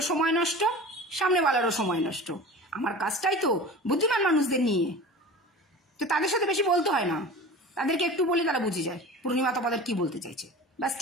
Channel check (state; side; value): normal; both; correlation 0.36